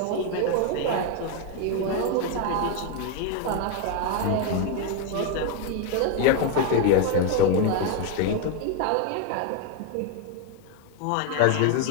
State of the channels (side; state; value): both; different; correlation 0.01